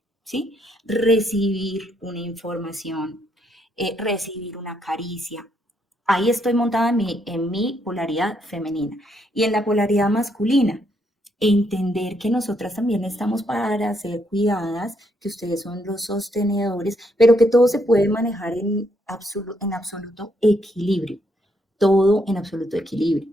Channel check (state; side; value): normal; both; correlation 0.74